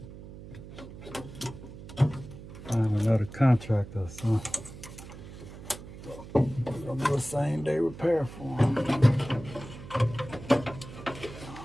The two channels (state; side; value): noise; right; hum, 14 dB below the sound